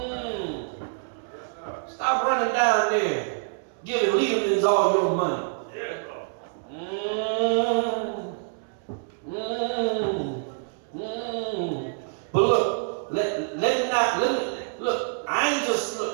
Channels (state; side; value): silent; left; 61 dB below the other